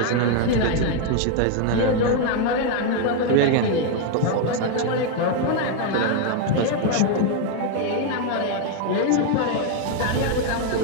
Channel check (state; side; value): different; both; correlation 0.01